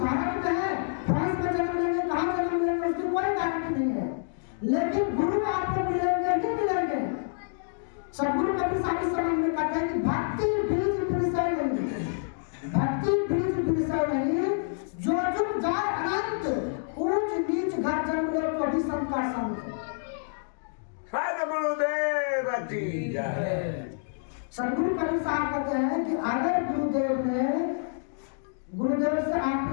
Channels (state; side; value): silent; right; digital silence